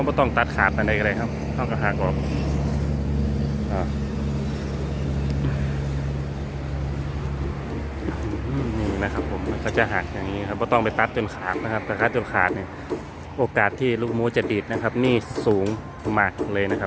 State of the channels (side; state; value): both; identical; correlation 1.00